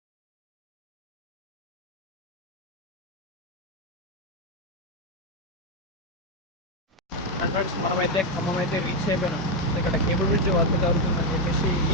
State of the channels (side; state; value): both; normal; correlation 0.05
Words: ఫ్రెండ్స్, మనమైతే ఖమ్మం అయితే రీచ్ అయిపోయినాం. ఇక్కడ కేబుల్ బ్రిడ్జ్ వర్క్ జరుగుతుందని చెప్పేసి